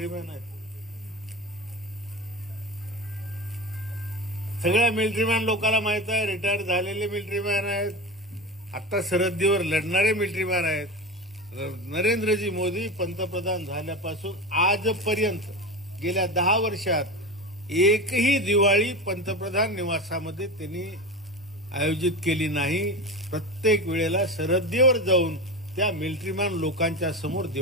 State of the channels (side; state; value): both; normal; correlation 0.25